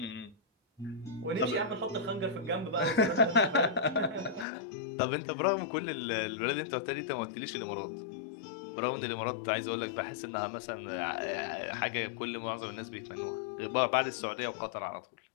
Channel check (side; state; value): right; drops out; at 4.5 s